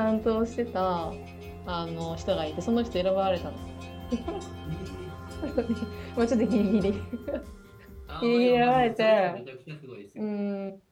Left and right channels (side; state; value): both; identical; correlation 1.00